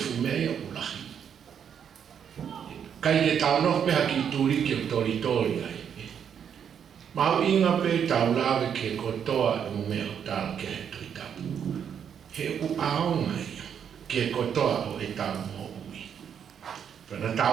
fumea ulahi. Kai ke tau noh peha ki turi ki o tori ai. Mahu inga pe tau lawe ke kotoa e mea o tau ke he toi tapu. He u aonga ia, ke kotoa o e tau mo ui. Pena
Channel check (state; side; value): quieter; left; 8.1 dB